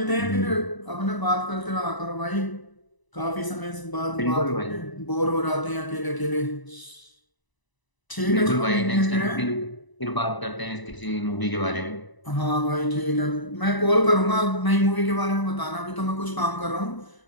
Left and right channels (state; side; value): late; right; 1.0 ms